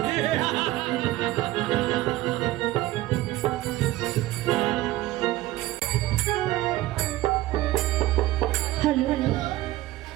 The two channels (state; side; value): quieter; left; 16.6 dB